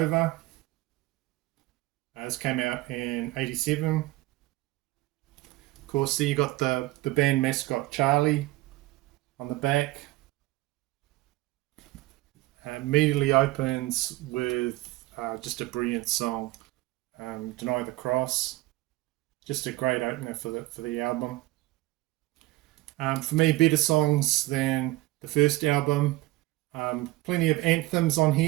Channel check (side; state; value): left; quieter; 18.8 dB